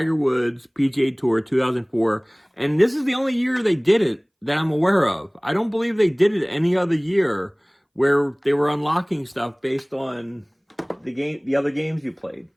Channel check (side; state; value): both; identical; correlation 1.00